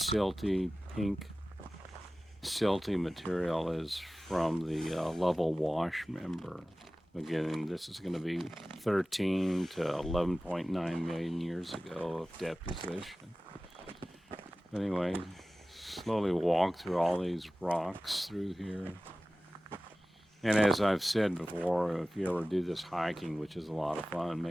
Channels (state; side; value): normal; both; correlation 0.97